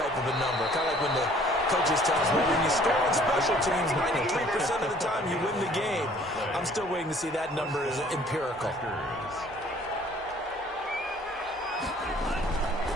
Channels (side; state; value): both; normal; correlation 0.56